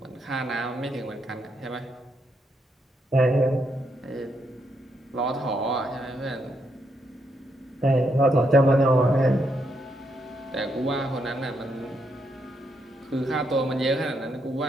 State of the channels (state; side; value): normal; both; correlation 0.78